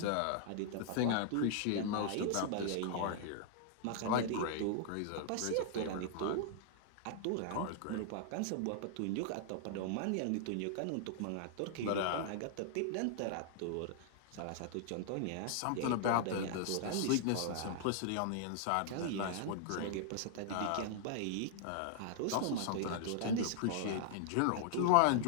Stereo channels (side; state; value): both; different; correlation -0.01